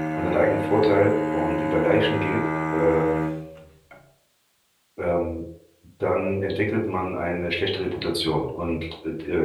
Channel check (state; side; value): identical; both; correlation 1.00